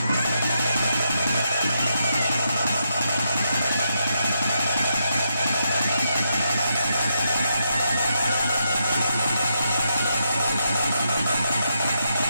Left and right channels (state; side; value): inverted; both; correlation -0.82